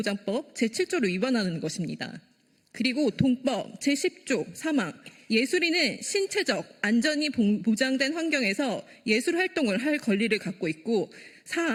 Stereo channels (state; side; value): identical; both; correlation 1.00